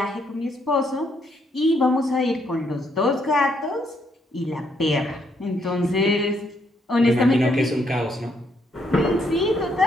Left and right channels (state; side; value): normal; both; correlation 0.73